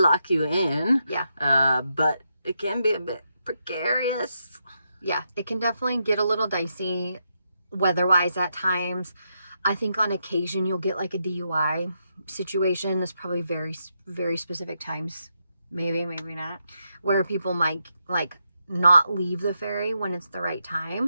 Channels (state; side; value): inverted; both; correlation -0.82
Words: you in. Yeah. But it can be a bit precarious. Yeah, it can definitely get a little dicey weather-wise at times. I think on occasion you'll get a DUI situation. There's probably very, very specific times, maybe not, where people might not leave the ferry when it's the right